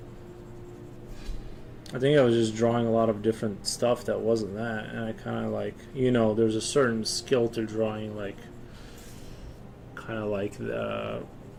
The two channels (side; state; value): both; identical; correlation 1.00